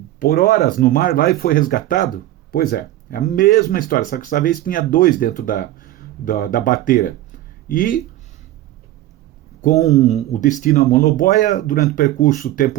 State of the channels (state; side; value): quieter; left; 14.7 dB